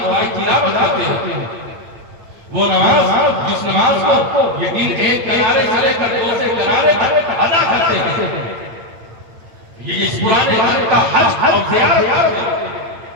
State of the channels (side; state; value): left; late; 8.9 ms